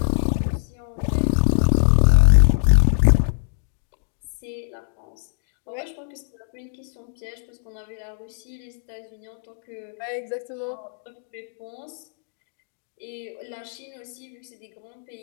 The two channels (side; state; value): right; silent; digital silence